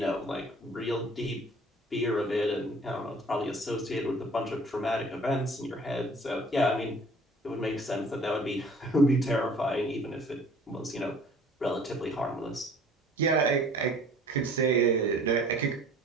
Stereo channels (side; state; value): both; normal; correlation 0.51